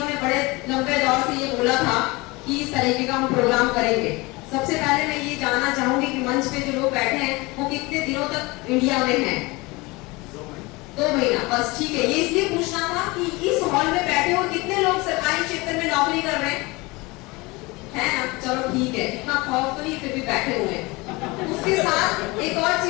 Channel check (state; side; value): quieter; right; 23.9 dB